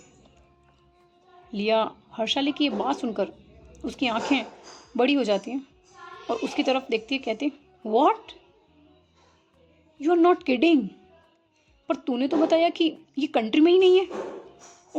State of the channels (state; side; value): identical; both; correlation 1.00